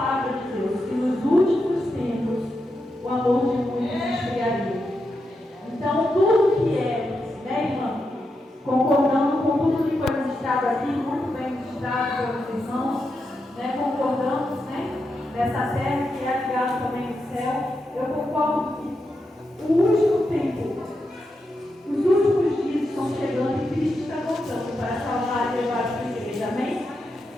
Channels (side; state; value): both; normal; correlation 0.86